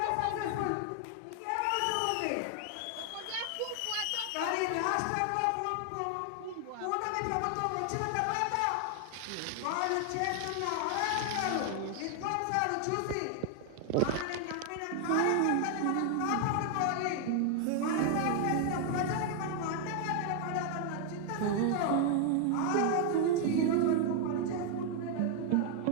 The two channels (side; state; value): both; different; correlation 0.00